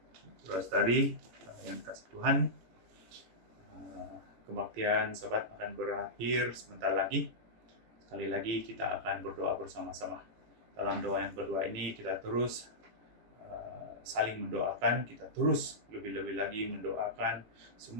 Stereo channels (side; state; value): left; late; 17 ms